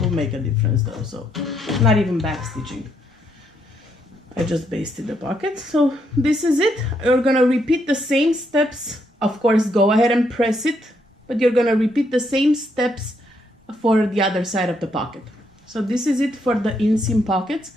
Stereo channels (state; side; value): normal; both; correlation 0.75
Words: make a difference though, so not even back stitching. I just basted the pocket. So this is it. You're gonna repeat the same steps. Of course, go ahead and press it, but you're gonna repeat the same steps for the other side of the pocket. So this is it for the inseam pockets.